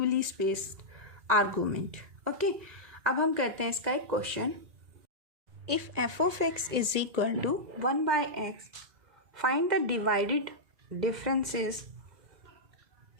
spaced argument, okay. अब हम करते हैं इसका एक question, if f of x is equal to 1 by x, find the divided differences,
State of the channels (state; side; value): late; left; 2.0 ms